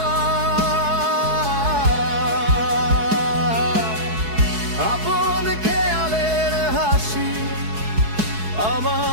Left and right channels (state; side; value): late; left; 4.7 ms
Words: আপন খেয়ালের হাসি